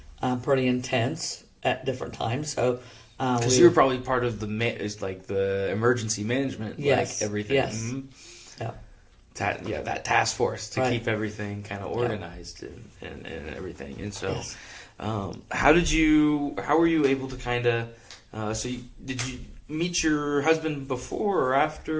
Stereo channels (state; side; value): identical; both; correlation 1.00